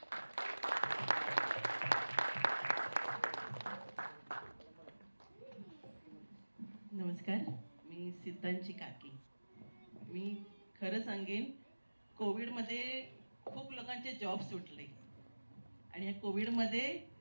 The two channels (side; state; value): both; inverted; correlation -1.00